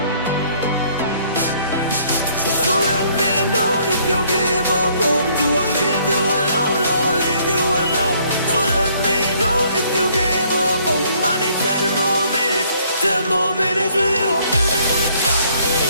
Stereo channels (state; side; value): inverted; both; correlation -0.63